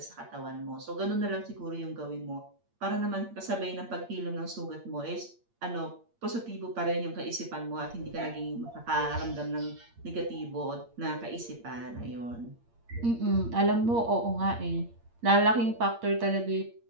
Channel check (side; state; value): left; late; 8.6 ms